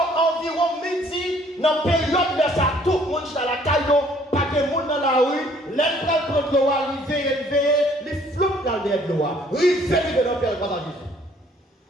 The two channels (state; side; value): normal; both; correlation 0.60